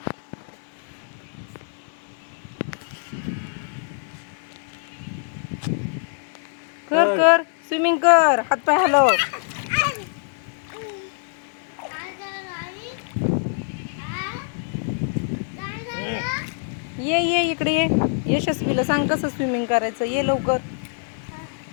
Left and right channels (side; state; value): right; silent; digital silence